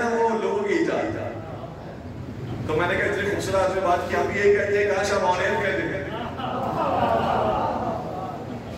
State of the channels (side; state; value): both; identical; correlation 1.00